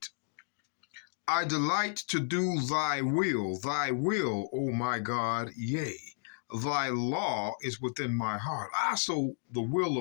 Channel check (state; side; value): silent; right; digital silence